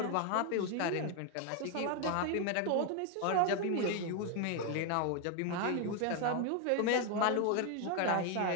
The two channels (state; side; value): different; both; correlation 0.01